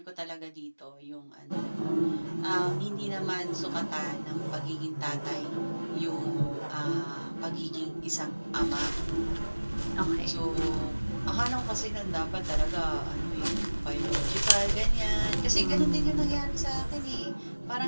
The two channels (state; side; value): inverted; both; correlation -1.00